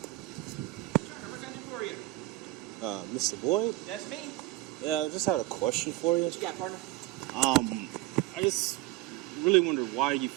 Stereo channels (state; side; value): quieter; left; 17.5 dB